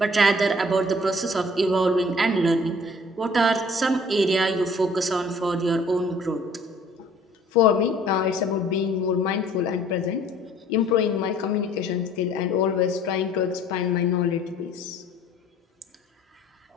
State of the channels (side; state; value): both; normal; correlation 0.54